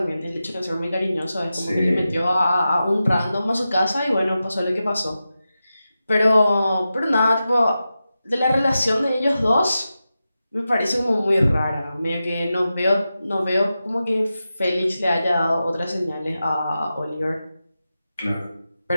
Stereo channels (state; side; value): inverted; both; correlation -0.92